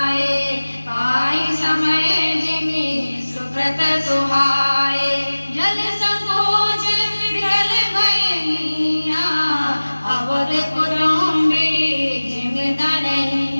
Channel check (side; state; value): both; inverted; correlation -1.00